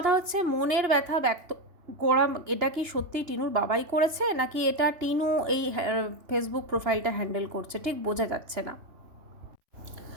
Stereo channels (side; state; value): left; late; 2.9 ms